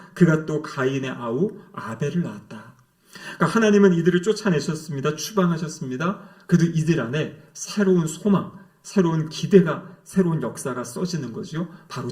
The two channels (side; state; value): both; identical; correlation 1.00